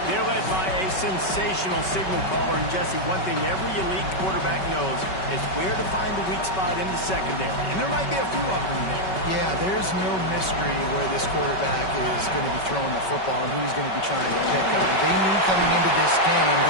They're led by a sensational signal caller. And Jesse, one thing every elite quarterback knows is where to find the weak spot in the secondary. And there might be a few of them there. Yeah, there's no mystery where this quarterback is going to be throwing the football and who he's going to be trying to pick up. They knew coming into this game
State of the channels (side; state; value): right; late; 5.3 ms